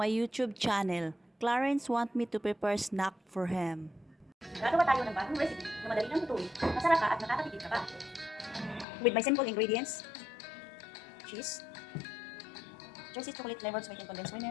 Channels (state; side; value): drops out; right; at 8.8 s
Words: YouTube channel. Clarence want me to prepare snack for him. Gagawa tayo ng bagong recipe na madali nang lutuin, masarap ka at nakakatipid ka pa. With my simple ingredients, cheese, Jersey chocolate flavored sweetened condensed